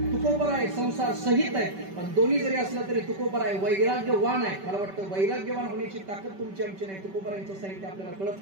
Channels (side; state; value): left; late; 5.2 ms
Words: तुकोबर आहे संसार सहित आहे. पण दोन्ही जरी असलं तरी तुकोबर आहे वैराग्यवान आहे. मला वाटतं वैराग्यवान होण्याची ताकद तुमची आमची नाही. तुकोबरांचं साहित्य आपल्याला कळत